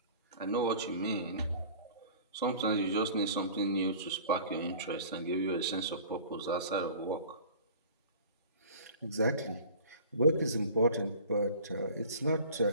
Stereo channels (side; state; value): both; inverted; correlation -0.44